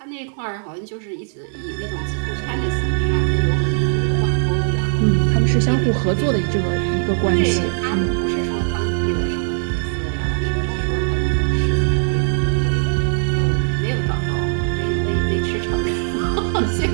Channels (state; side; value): silent; left; 63 dB below the other